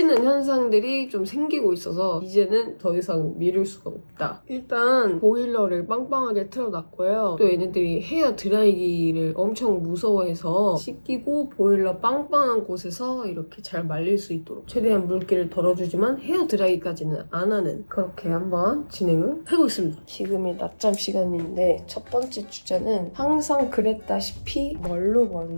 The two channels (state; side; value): inverted; both; correlation -1.00